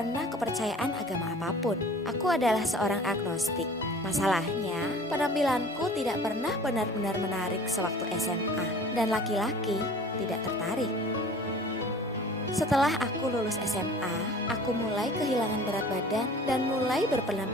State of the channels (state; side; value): normal; both; correlation 0.45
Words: kepercayaan agama apapun. Aku adalah seorang agnostik. Masalahnya, penampilanku tidak pernah benar-benar menarik sewaktu SMA. Dan laki-laki tidak tertarik. Setelah aku lulus SMA, aku mulai kehilangan berat badan dan mulai